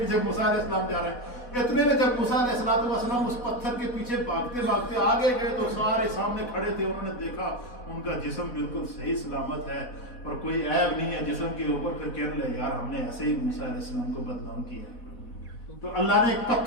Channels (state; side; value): late; right; 4.1 ms